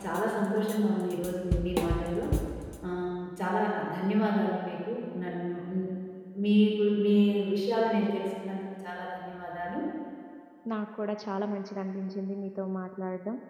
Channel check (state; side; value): identical; both; correlation 1.00